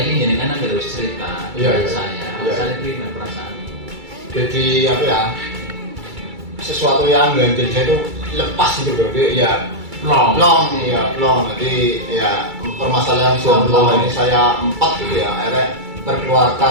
ingin jenengan harus cerita saya pribadi perasaan. Jadi apa ya, sesuatu yang ganjil saya itu lepas gitu bro, ya long. Jadi ya permasalahan jomblo ini saya 4 gitu ya, akhirnya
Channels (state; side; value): late; left; 2.3 ms